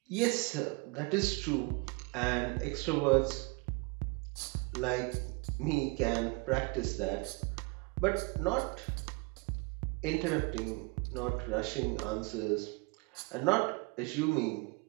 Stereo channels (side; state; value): left; quieter; 28.9 dB